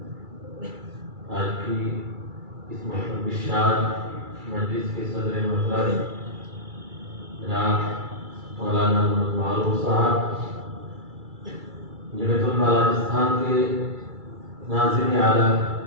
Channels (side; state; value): left; late; 2.3 ms